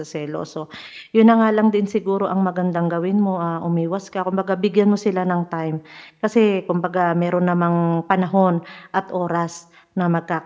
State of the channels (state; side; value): identical; both; correlation 1.00